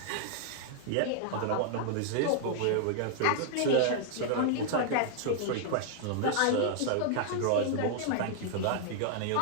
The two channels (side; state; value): both; different; correlation -0.01